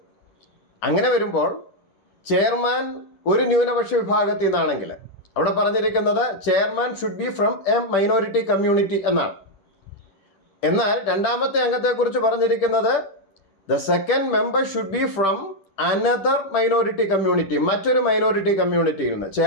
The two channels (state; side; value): late; right; 10 ms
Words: അങ്ങനെ വരുമ്പോൾ ചെയർമാൻ ഒരു ന്യൂനപക്ഷ വിഭാഗത്തിൽ നിന്നാണെങ്കിൽ അവിടെ പറഞ്ഞിരിക്കുന്നത് chairman should be from A minority community എന്നാണ്. എന്നാൽ രണ്ടാമത്തെ അംഗത്തെക്കുറിച്ച് പറഞ്ഞിരിക്കുന്നത് the second member should be from another minority community, മറ്റൊരു മൈനോറിറ്റി കമ്മ്യൂണിറ്റിയിൽ നിന്ന്.